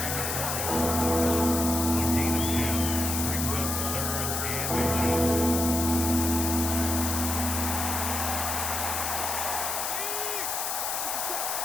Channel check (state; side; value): noise; left; hiss, 1 dB below the sound